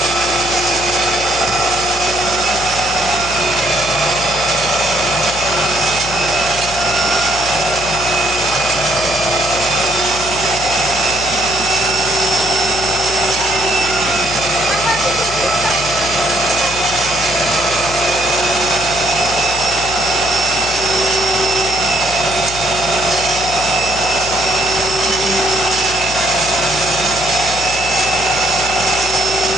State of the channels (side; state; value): left; noise; hum, 11 dB below the sound